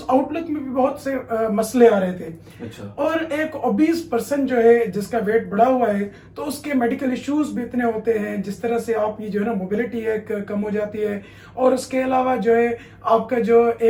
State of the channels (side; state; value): both; identical; correlation 1.00